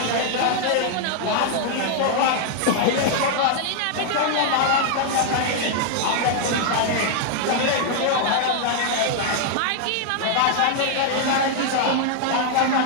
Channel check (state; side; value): different; both; correlation 0.00